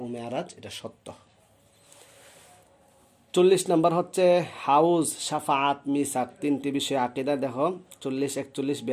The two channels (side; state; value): both; identical; correlation 1.00